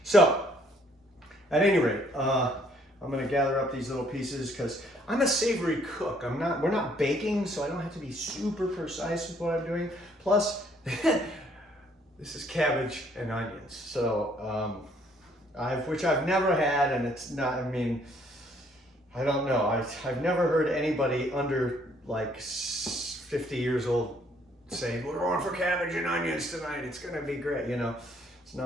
So at any rate, I'm going to gather up these little pieces because I'm a savory cook. We're not baking, so I don't have to be super precise with what I'm doing. Plus, this is cabbage and onions. So, which I've never had, and it's not, I mean, I don't know. I've never heard anybody under like 50 years old saying, we're going for cabbage and onions tonight. It's going to be great. You know, it's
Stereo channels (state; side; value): normal; both; correlation 0.65